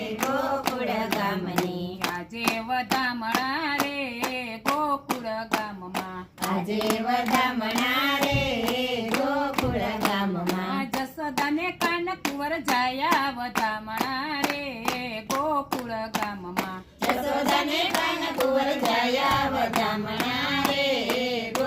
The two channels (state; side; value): identical; both; correlation 1.00